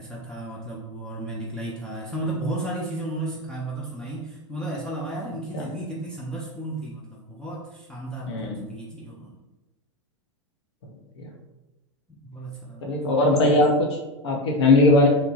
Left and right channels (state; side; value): normal; both; correlation 0.18